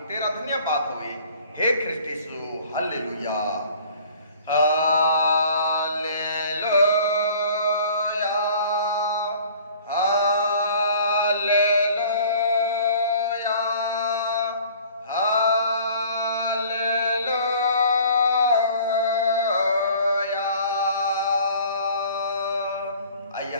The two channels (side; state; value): both; inverted; correlation -0.51